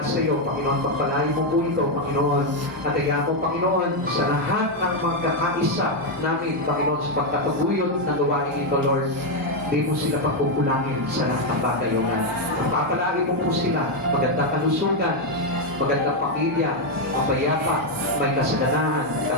sa iyo, Panginoon, pagpalagi mo po ito, Panginoon. At kaya po, Panginoon, sa lahat ng magkakaisa namin, Panginoon, sa pagkataguyod ng gawain ito, Lord, di mo sila pagkukulangin sa lahat ng bagay, O God. Pagpapalagi mo po sila, magandang kalusugan, magandang pamilya, mapayapa, may kasaganahan,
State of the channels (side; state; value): both; normal; correlation 0.03